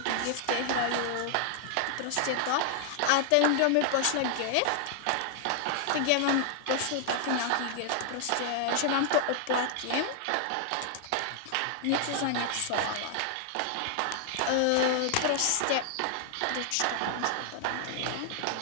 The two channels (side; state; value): both; different; correlation -0.01